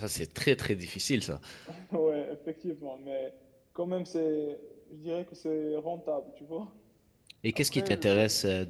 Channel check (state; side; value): identical; both; correlation 1.00